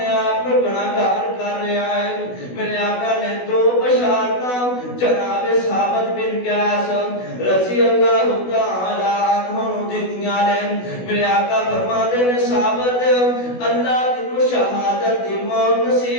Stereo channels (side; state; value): right; late; 16 ms